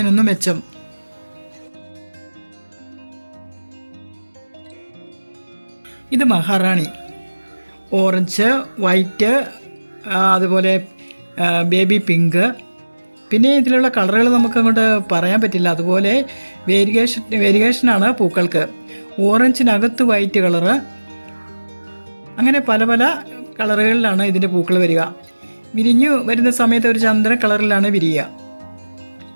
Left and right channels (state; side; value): inverted; both; correlation -1.00